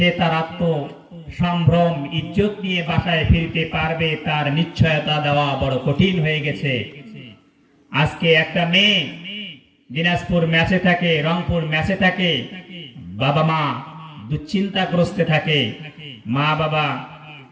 তার আত্ম সম্ভ্রম ইজ্জত নিয়ে বাসায় ফিরতে পারবে, তার নিশ্চয়তা দেওয়া বড় কঠিন হয়ে গেছে। আজকে একটা মেয়ে দিনাজপুর ম্যাচে থাকে, রংপুর ম্যাচে থাকে, বাবা মা দুশ্চিন্তাগ্রস্তে থাকে, মা বাবা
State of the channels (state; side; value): identical; both; correlation 1.00